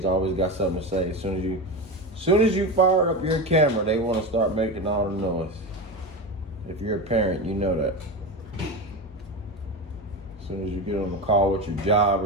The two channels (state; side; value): normal; both; correlation 0.21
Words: always got something to say. As soon as you fire up your camera, they want to start making all the noise. If you're a parent, you know that. As soon as you get on the call with your job